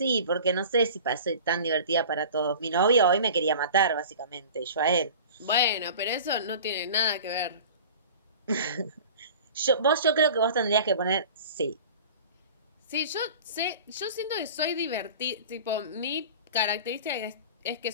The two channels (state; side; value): inverted; both; correlation -0.40